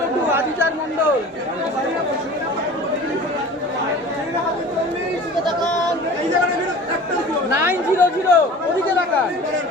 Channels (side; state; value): both; normal; correlation 0.41